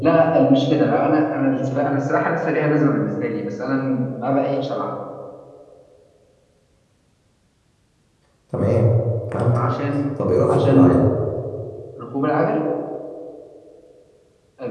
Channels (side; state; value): both; identical; correlation 1.00